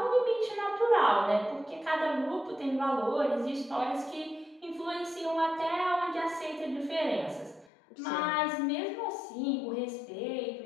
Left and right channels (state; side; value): drops out; right; at 7.7 s